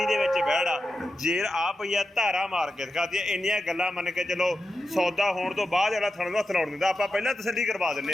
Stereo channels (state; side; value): normal; both; correlation 0.90